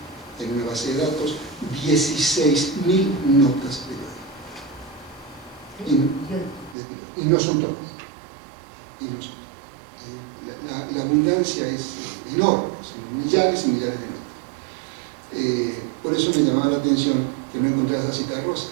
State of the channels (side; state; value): left; drops out; at 6.8 s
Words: en una base de datos 16.000 notas periódicas. Y no son todas. La abundancia es enorme, son millares y millares de notas. Por eso me llamaba la atención que no encontrara esa Cita Rosa,